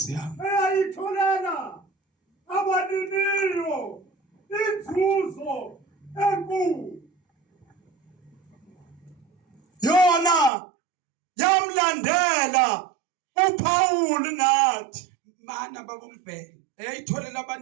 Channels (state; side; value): drops out; left; at 10.5 s